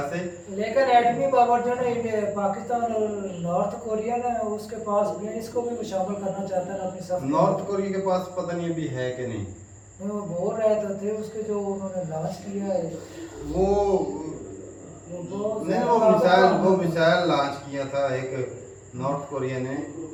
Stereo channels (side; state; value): both; identical; correlation 1.00